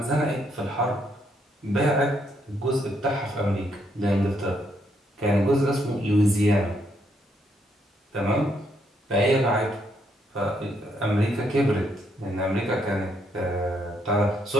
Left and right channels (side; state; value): both; normal; correlation 0.74